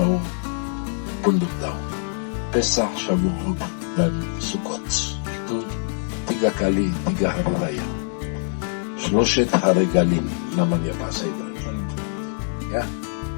Punduk Daun, Pesach, Shavuot dan Sukkot. Itu 3 kali 3 hari raya. Shloshet Haregalim namanya bahasa Ibrani. Ya,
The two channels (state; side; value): silent; right; 63 dB below the other